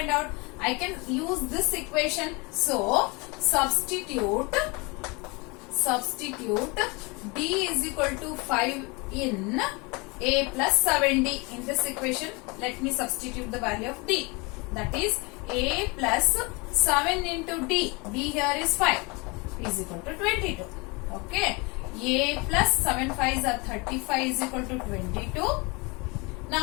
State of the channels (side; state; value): right; quieter; 27.8 dB